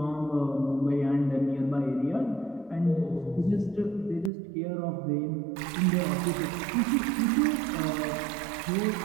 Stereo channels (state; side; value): drops out; left; at 4.3 s